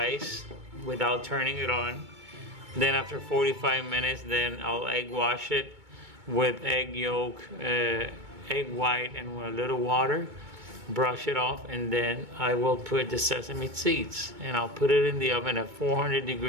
without turning it on. Then after 45 minutes, then I'll egg wash it with egg yolk, egg white, and with a little water. Brush it off, and then I will put the sesame seeds, and I'll put it in the oven at 400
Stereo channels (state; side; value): late; left; 2.2 ms